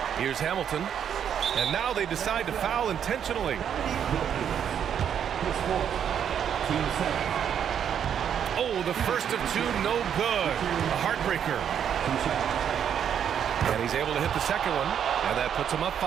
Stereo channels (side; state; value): left; quieter; 8.7 dB